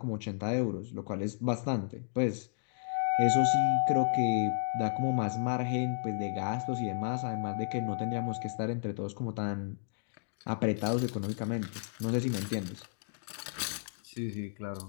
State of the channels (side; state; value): right; silent; digital silence